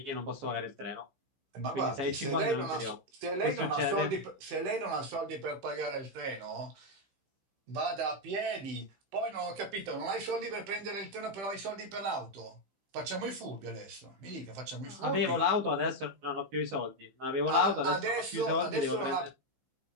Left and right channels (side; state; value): left; late; 15 ms